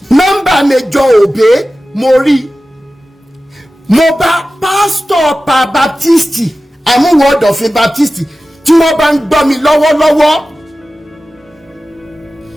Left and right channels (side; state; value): both; normal; correlation 0.95